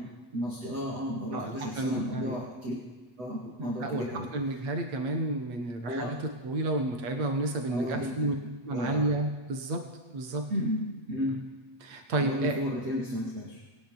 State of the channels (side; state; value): left; late; 8.1 ms